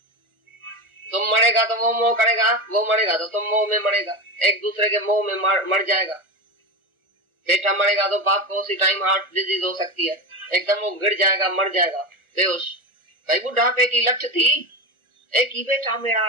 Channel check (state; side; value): late; left; 1.4 ms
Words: तुम मरेगा तो वो मोह करेगा, वो मरेगा तो तुम मोह में मरेगा। एक दूसरे के मोह में मर जाएगा। बेटा मरेगा तो बाप को उसी टाइम हार्ट डिजीज हो सकती है, एकदम वो गिर जाएगा, मर जाएगा बेहोश। भाई बुढ़ापे की लठ थी, एक ही बेटा मेरा